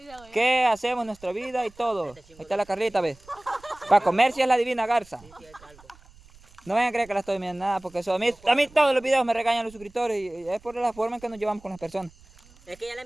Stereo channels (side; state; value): right; noise; rumble, 25 dB below the sound